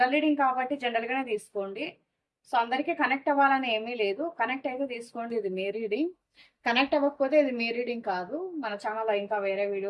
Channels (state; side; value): identical; both; correlation 1.00